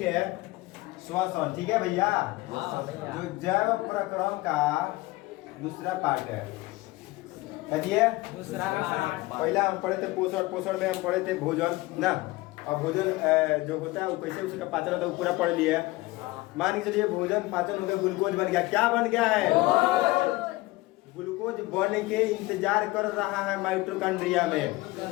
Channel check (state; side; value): quieter; right; 20.5 dB